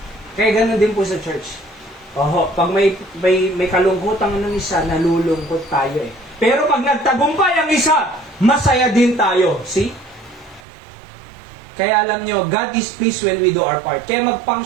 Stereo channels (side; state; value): left; drops out; at 10.6 s